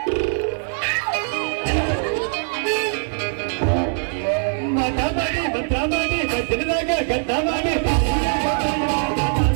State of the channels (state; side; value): silent; left; digital silence